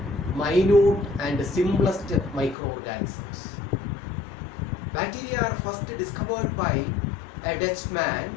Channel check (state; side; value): drops out; right; at 2.6 s